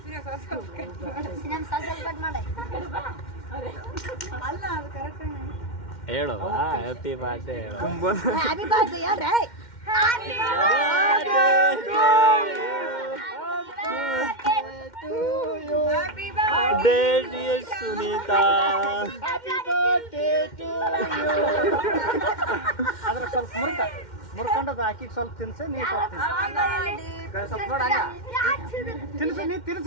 ಹೇಳು ಹ್ಯಾಪಿ ಬರ್ಡೇ ಹೇಳು ಸುನೀತಾ ಅದ್ರ ಸ್ವಲ್ಪ ಮುರ್ಕೊಂಡದ ಹಾಕಿ ಸ್ವಲ್ಪ ತಿನ್ಸ ನೀ ತಿನ್ಸು ನೀ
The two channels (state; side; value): late; right; 2.1 ms